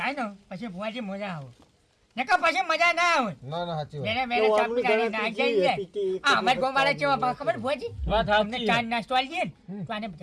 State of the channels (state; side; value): identical; both; correlation 1.00